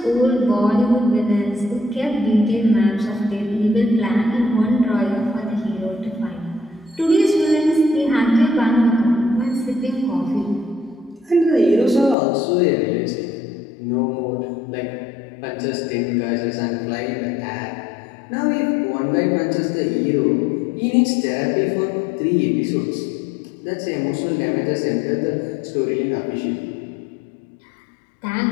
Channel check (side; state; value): right; drops out; at 12.2 s